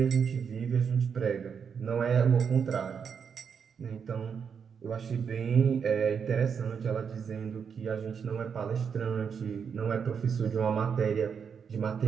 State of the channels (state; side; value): quieter; left; 6.7 dB